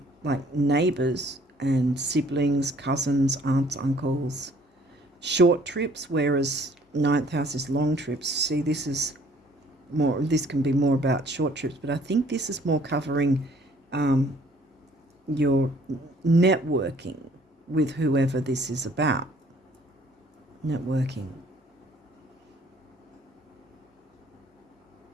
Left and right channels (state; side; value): normal; both; correlation 0.59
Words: like neighbours and siblings, cousins, aunts, uncles, short trips, whereas 9th house is long trips. See, this is more, this can be more about short trips, but I think this is more covering your networking with whoever this is about. Networking.